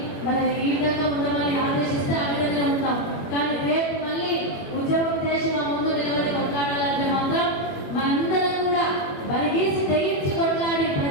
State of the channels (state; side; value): late; right; 21 ms